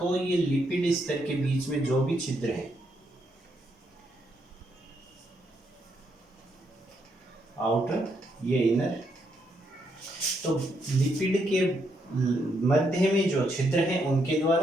ये लिपिड स्तर के बीच में जो भी छिद्र है, आउटर ये इनर, तो लिपिड के मध्य में जो छिद्र हैं उनके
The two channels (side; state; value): both; normal; correlation 0.77